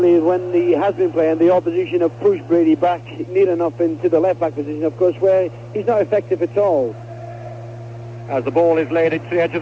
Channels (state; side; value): identical; both; correlation 1.00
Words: when he has been playing, the opposition have pushed Brady back near enough into the left-back position, of course, where he's not effective at all. As the ball is laid into the edge of